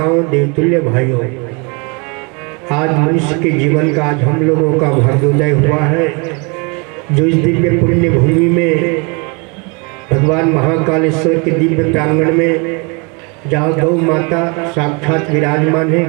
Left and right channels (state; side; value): quieter; left; 31.6 dB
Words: देवतुल्य भाइयों, आज मनुष्य के जीवन का आज हम लोगों का भाग्योदय हुआ है, जो इस दिव्य पुण्य भूमि में भगवान महाकालेश्वर के दिव्य प्रांगण में, जहाँ गौ माता साक्षात विराजमान है,